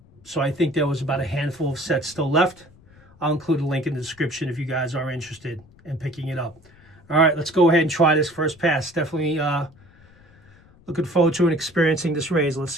I think there was about a handful of sets still left. I'll include a link in the description if you guys are interested in picking it up. All right, let's go ahead and try this first pass. Definitely looking forward to and experiencing this razor. Let's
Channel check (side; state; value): left; noise; rumble, 27 dB below the sound